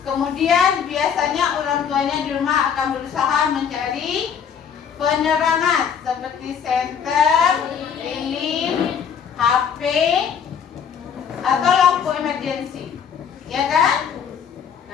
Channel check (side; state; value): right; quieter; 7.5 dB